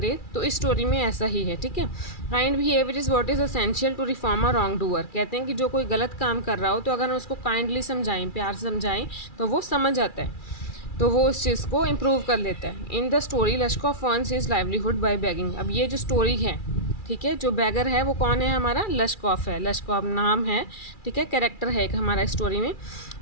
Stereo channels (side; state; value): right; late; 2.4 ms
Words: तो इस स्टोरी में ऐसा ही है. ठीक है, kind behaviour is what is essential to reform a wrongdoer. कहते हैं कि जो कोई गलत काम कर रहा हो तो अगर हम उसको काइंडली समझाएं, प्यार से समझाएं, तो वो समझ जाता है, तो वो उस चीज़ को इम्प्रूव कर लेता है. In the story Lushkoff earns his livelihood by begging. अब ये जो स्टोरी है, ठीक है, जो बैगर है वो कौन है? हमारा लश्कोफ है. लश्कोफ नाम है, ठीक है, कैरेक्टर है एक हमारा स्टोरी में.